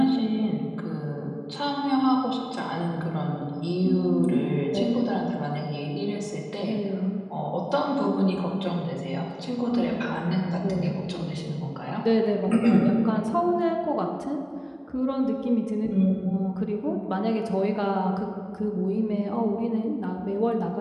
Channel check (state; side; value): identical; both; correlation 1.00